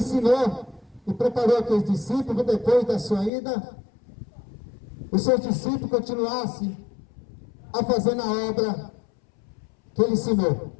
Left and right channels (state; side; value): drops out; right; at 3.3 s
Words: e preparou aqueles discípulos, depois da sua ida, os seus discípulos continuassem a fazer na obra que ele ensinou.